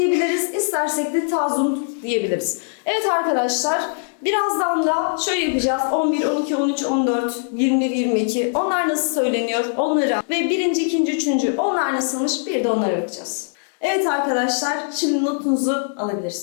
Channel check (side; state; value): right; silent; digital silence